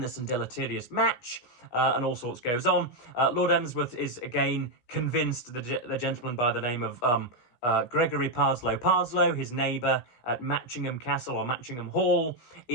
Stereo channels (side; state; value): right; late; 16 ms